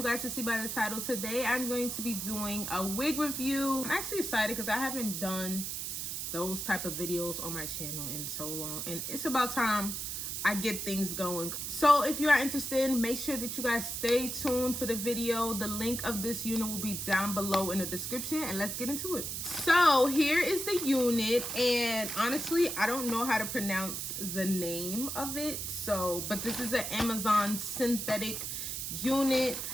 guys can see by the title, today I'm going to be doing a wig review. I'm actually excited because I haven't done those type of videos on my channel in so long, and it's about time I get things going. So if you are interested, make sure that you guys stay tuned for the video. The link of this unit will be down below in the description, and let's get into it. So here is the unit, and honestly I don't know how to pronounce the name of it, but this is an Amazon synthetic unit.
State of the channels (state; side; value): noise; right; hiss, 4 dB below the sound